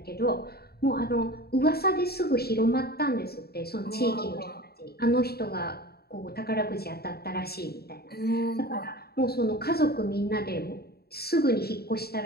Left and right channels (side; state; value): right; late; 0.46 ms